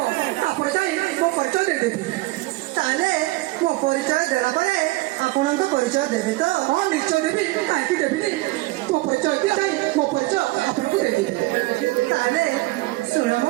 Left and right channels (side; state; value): left; quieter; 20.4 dB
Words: तापर जाई मो परिचय दे देबी ताले मो परिचय देला परे आपनक परिचय देबी तो हां निश्चय देबी काहे देबी तो परिचय दिया जाई मो परिचय आपनक दे देबी ताले सुन